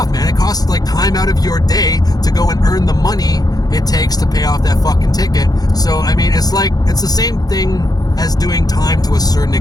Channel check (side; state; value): right; late; 0.19 ms